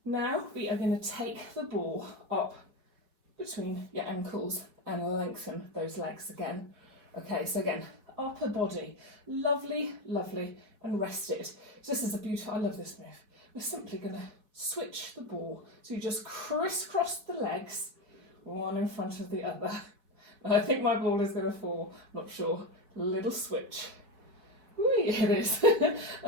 Now we are going to take the ball up between your ankles and lengthen those legs again. Okay, so again, upper body, lovely, lovely, and rested. So this is a beautiful, I love this move. We're simply going to switch the ball. So you just crisscross the legs, one in front of the other. And I think my ball is going to fall, not sure. Little switch. Whee, it is.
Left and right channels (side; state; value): left; late; 4.7 ms